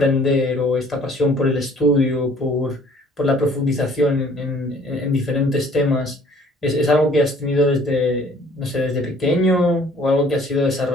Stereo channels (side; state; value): both; normal; correlation 0.56